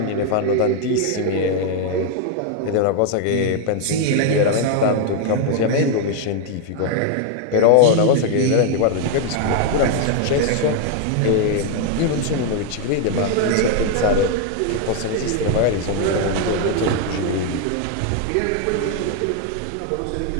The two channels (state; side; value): different; both; correlation 0.00